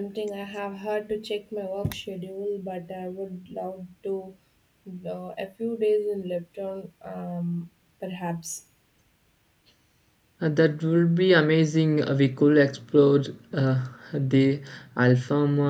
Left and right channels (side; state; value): both; identical; correlation 1.00